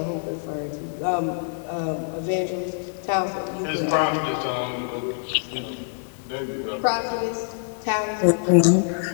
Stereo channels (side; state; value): right; silent; 62 dB below the other